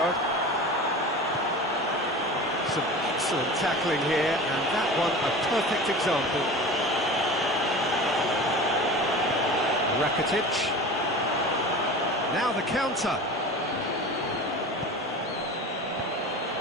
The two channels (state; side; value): normal; both; correlation 0.34